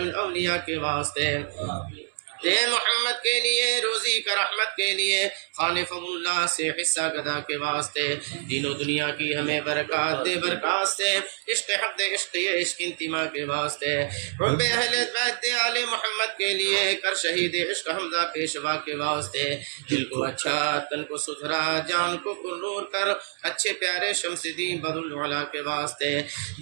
الاولیاء کے واسطے اے محمد کے لیے روزی کا رحمت کے لیے خالف اللہ سے حصہ گدا کے واسطے دین و دنیا کی ہمیں برکات دے برکات سے عشق حق دے عشق عشق انتما کے واسطے حب اہل بیت دے آل محمد کے لیے کر شہید عشق حمزہ پیشوا کے واسطے دل کو اچھا تن کو ستھرا جان کو پرنور کر اچھے پیارے شمس دین بدر العلا کے واسطے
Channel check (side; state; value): left; silent; 60 dB below the other